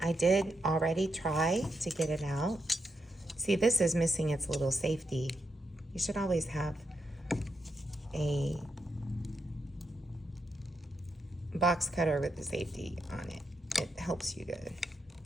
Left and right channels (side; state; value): both; normal; correlation 0.83